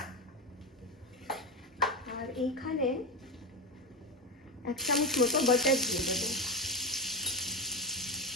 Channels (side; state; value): both; normal; correlation 0.17